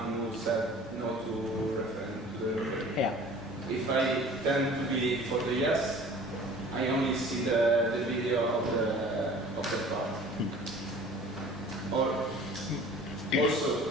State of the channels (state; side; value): normal; both; correlation 0.46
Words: who said no to the referendum. Yeah. If I tend to be for the yes, I only see the video of the part. Or also